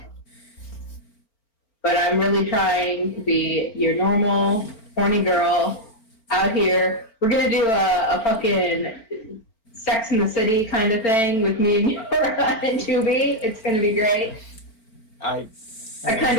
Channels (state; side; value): late; right; 4.4 ms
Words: but I'm really trying to be your normal, horny girl out here. We're gonna do a fucking Sex in the City kind of thing with me and Yora and Tubi. It's gonna be great. I Our kind